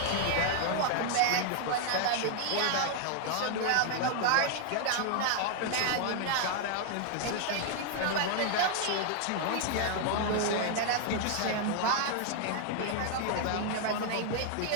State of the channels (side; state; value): both; different; correlation 0.00